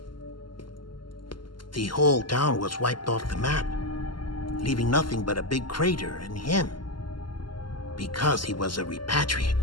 The whole town was wiped off the map, leaving nothing but a big crater and him. Because he was a repatriate.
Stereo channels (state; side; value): late; right; 0.72 ms